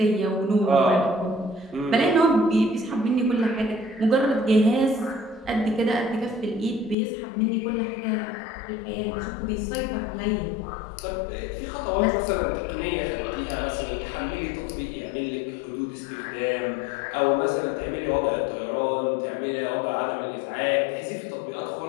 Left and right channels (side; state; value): right; drops out; at 7.0 s